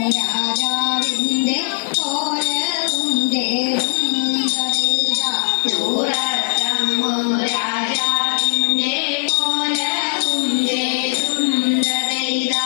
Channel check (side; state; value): right; silent; digital silence